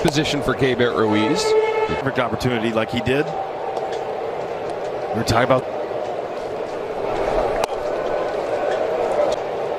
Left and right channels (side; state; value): both; identical; correlation 1.00